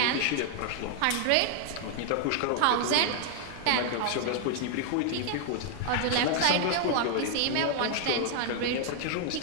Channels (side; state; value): both; different; correlation 0.00